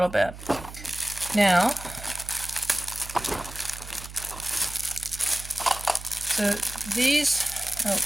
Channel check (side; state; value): right; noise; hum, 14 dB below the sound